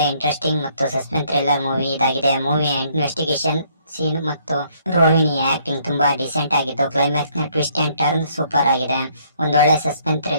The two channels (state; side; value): inverted; both; correlation -0.66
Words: ಇಂಟ್ರೆಸ್ಟಿಂಗ್ ಮತ್ತು ಸಸ್ಪೆನ್ಸ್ ಥ್ರಿಲ್ಲರ್ ಮೂವಿ ಇದಾಗಿದೆ. ಮೂವಿಯ ಇನ್ವೆಸ್ಟಿಗೇಷನ್ ಸೀನ್ ಮತ್ತು ರೋಹಿಣಿಯ ಆಕ್ಟಿಂಗ್ ತುಂಬಾ ಡಿಸೆಂಟ್ ಆಗಿದ್ದು ಕ್ಲೈಮ್ಯಾಕ್ಸ್ ನ ಟ್ವಿಸ್ಟ್ ಅಂಡ್ ಟರ್ನ್ ಸೂಪರ್ ಆಗಿದೆ. ಒಂದೊಳ್ಳೆ ಸಸ್ಪೆನ್ಸ್